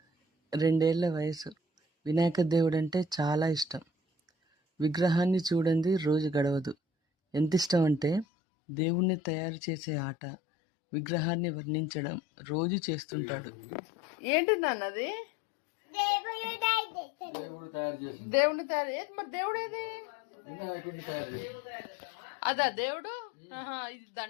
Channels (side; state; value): right; drops out; at 8.2 s